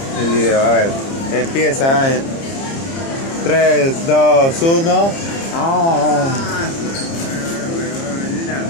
el video. A ver, empieza en 3, 2, 1. ¡Ah!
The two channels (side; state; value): right; late; 30 ms